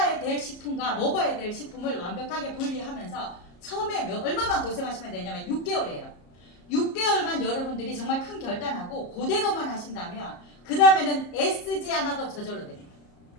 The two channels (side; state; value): right; late; 34 ms